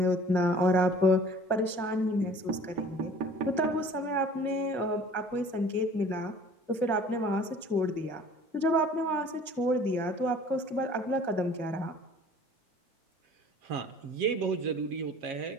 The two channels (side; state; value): both; normal; correlation 0.49